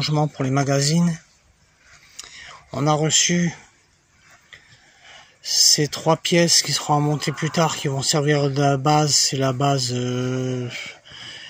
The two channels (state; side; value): identical; both; correlation 1.00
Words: pour les magazines. On a reçu ces trois pièces qui seront montées plus tard, qui vont servir de la base. C'est la base